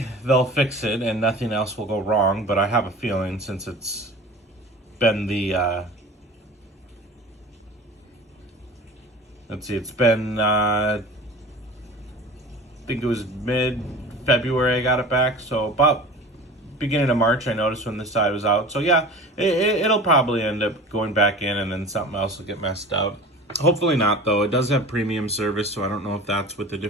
they'll fix it and nothing else will go wrong. But I have a feeling, since it's been it's been, I think it was mid-February I got it back, so about beginning of March I noticed when this side was out. So yeah, it'll probably end up going back in and then something else will get messed up. Hopefully not, though. It does have premium service, so I don't know if that's with a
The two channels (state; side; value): normal; both; correlation 0.38